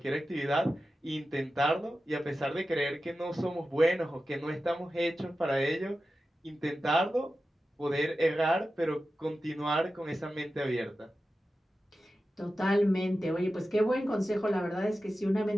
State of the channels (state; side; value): normal; both; correlation 0.93